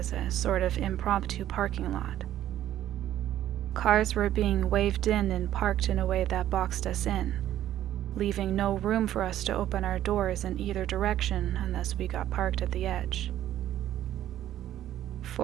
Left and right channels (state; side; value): quieter; left; 12.3 dB